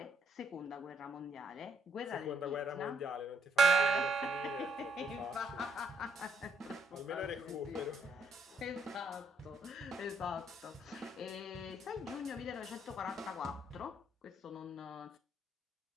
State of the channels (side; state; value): both; normal; correlation 0.71